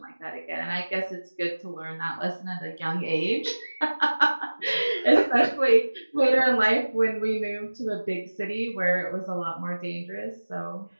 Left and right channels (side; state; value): both; inverted; correlation -1.00